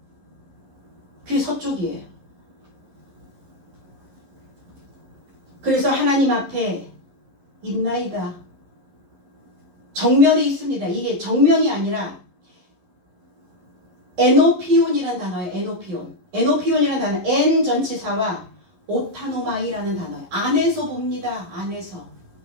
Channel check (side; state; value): left; late; 11 ms